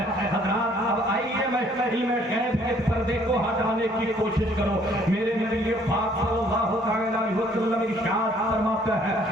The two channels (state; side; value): normal; both; correlation 0.61